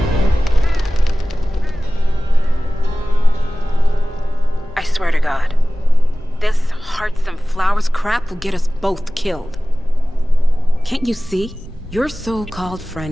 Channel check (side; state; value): both; normal; correlation 0.97